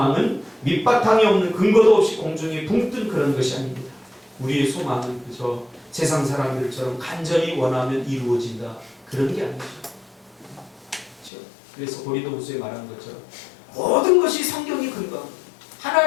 밑바탕이 없는 근거도 없이 공중에 붕 뜬 그런 것이 아닙니다. 우리의 소망은 그저 세상 사람들처럼 간절히 원하면 이루어진다, 그런 게 아니죠. 그렇죠? 그래서 고린도후서에 말한 것처럼 모든 것이 성경이 근거합니다.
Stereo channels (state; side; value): drops out; right; at 11.3 s